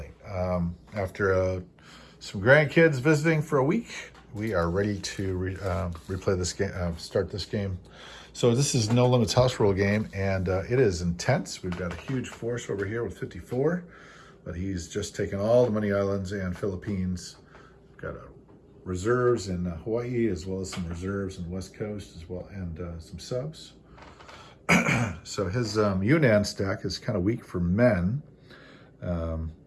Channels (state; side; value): identical; both; correlation 1.00